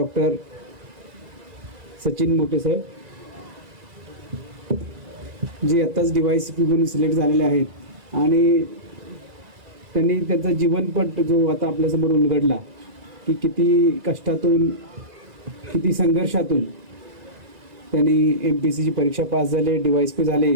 सचिन मोठे साहेब, जे आत्ताच DYCP म्हणून सिलेक्ट झालेले आहेत आणि त्यांनी त्यांचा जीवनपट जो आता आपल्यासमोर उलगडला की किती कष्टातून किती संघर्षातून त्यांनी MPSCची परीक्षा पास झाले, DYCP झाले.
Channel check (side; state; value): left; late; 2.0 ms